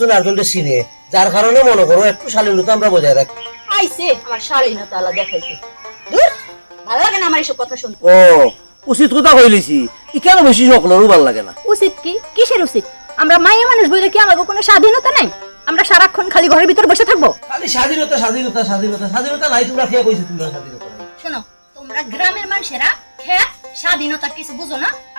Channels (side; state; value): both; inverted; correlation -1.00